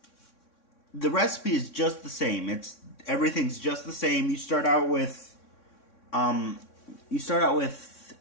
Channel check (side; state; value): right; late; 3.6 ms